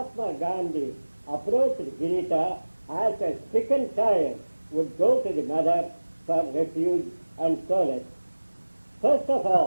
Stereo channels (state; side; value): inverted; both; correlation -1.00